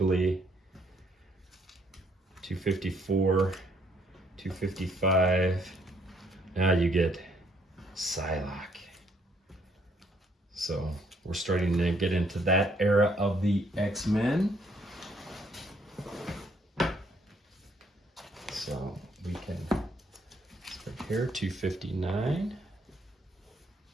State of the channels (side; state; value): both; normal; correlation 0.68